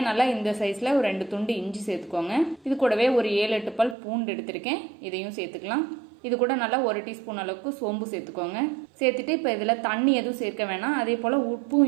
நல்லா இந்த சைஸ்ல ஒரு 2 துண்டு இஞ்சி சேர்த்துக்கோங்க. இது கூடவே ஒரு 7-8 பல் பூண்டு எடுத்திருக்கேன். இதையும் சேர்த்துக்கலாம். இது கூட நல்லா 1 டீஸ்பூன் அளவுக்கு சோம்பு சேர்த்துக்கோங்க. சேர்த்துட்டு இப்ப இதுல தண்ணி எதுவும் சேர்க்க வேணாம். அதே போல உப்பும்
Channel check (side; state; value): left; drops out; at 4.0 s